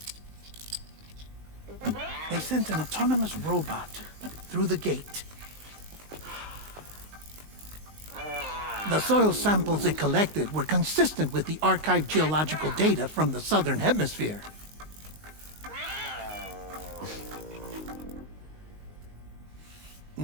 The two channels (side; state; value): left; late; 19 ms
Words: they sent an autonomous robot through the gate. The soil samples it collected were consistent with the archived geological data from the Southern Hemisphere.